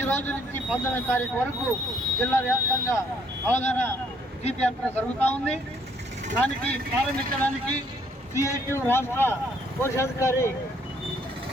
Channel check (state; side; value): normal; both; correlation 0.66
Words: రోజు నుంచి 19వ తారీఖు వరకు జిల్లా వ్యాప్తంగా అవగాహన జీప్ యాత్ర జరుగుతూ ఉంది. దానికి ప్రారంభించడానికి సిఐటి రాష్ట్ర కోశాధికారి